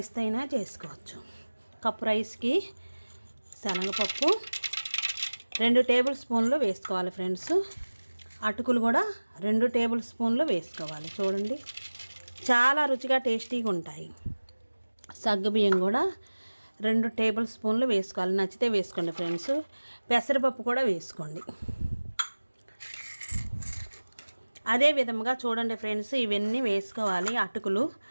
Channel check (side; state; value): both; inverted; correlation -1.00